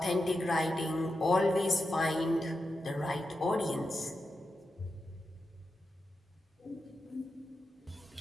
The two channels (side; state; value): both; normal; correlation 0.88